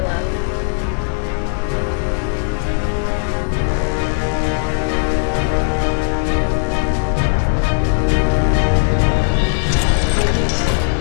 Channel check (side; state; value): right; silent; digital silence